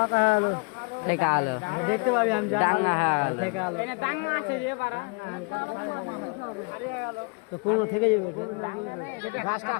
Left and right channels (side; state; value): right; quieter; 32.2 dB